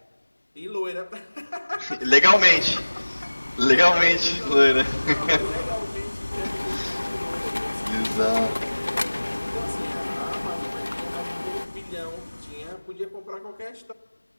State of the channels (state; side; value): inverted; both; correlation -1.00